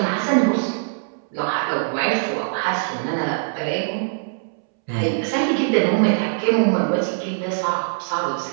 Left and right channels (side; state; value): left; silent; 64 dB below the other